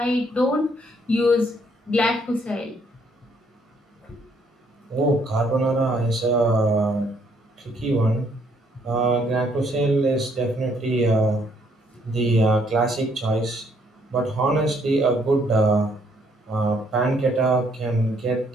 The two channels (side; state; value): both; normal; correlation 0.68